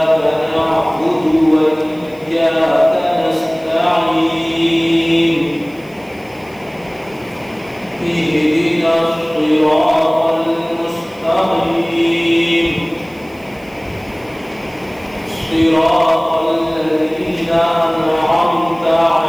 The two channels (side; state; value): right; noise; hiss, 28 dB below the sound